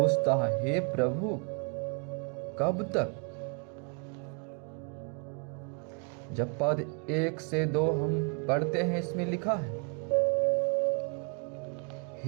है, हे प्रभु, कब तक? जब पद 1 से 2 हम पढ़ते हैं, इसमें लिखा है,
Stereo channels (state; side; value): quieter; left; 37.2 dB